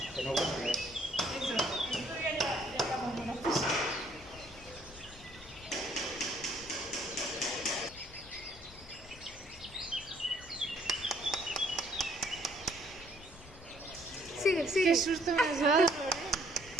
que no vuelve. Sigue, sigue. Qué susto me has dado.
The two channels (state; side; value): noise; left; rumble, 19 dB below the sound